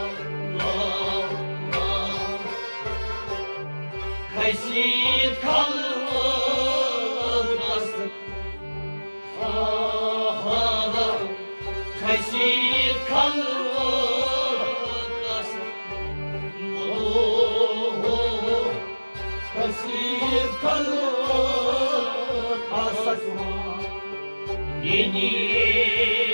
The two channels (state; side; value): inverted; both; correlation -1.00